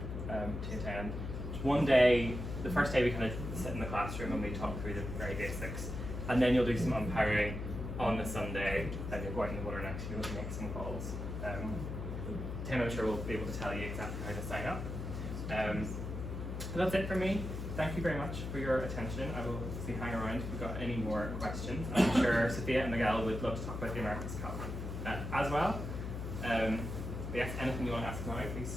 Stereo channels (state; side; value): noise; left; hum, 5 dB below the sound